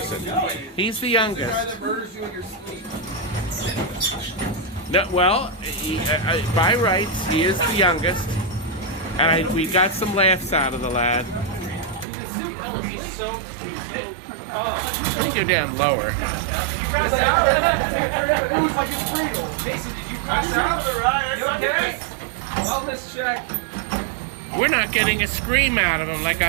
He's the youngest. No, well, by rights, he is the youngest, and we got some laughs out of the lad. Let me go down lower. Wellness check. We're not getting a scream out of him like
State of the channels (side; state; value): left; drops out; at 12.1 s